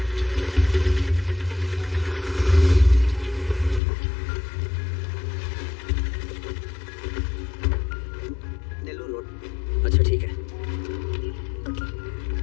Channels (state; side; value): drops out; right; at 3.8 s